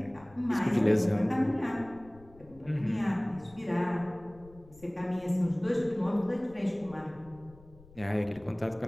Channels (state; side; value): noise; left; rumble, 23 dB below the sound